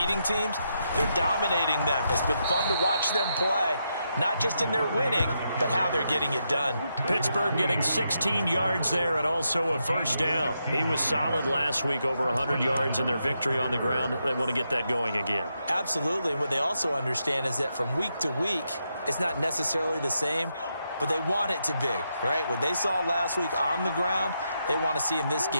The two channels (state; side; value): inverted; both; correlation -0.82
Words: teams, they're dominating them. It's been fun to watch them play, not just in their winning, but how they're getting it done. Pittsburgh getting 16 yards there and also a first down. He was solid last week, over 100 yards in their victory on the ground. They want to get that going again. Absolutely. What they also understand is that from week to week, it's not necessarily the same, but they want it to be, right? What they saw last week on the ground, they want to see in this